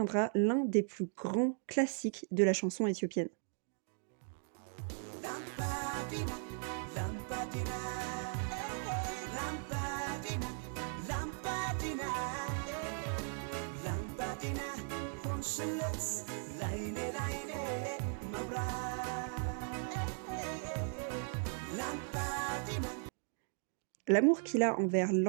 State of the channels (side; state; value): left; silent; 53 dB below the other